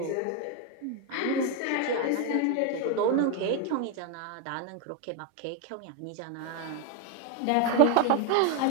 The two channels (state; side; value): different; both; correlation 0.01